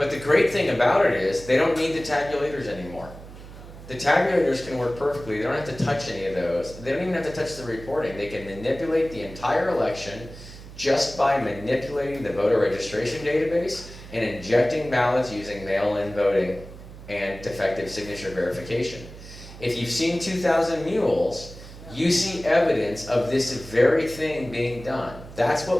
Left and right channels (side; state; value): right; noise; hum, 16 dB below the sound